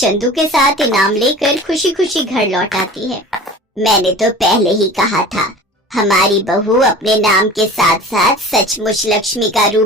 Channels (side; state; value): both; normal; correlation 0.39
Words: के साथ इनाम लेकर खुशी खुशी घर लौट आती है। मैंने तो पहले ही कहा था, हमारी बहू अपने नाम के साथ साथ सचमुच लक्ष्मी का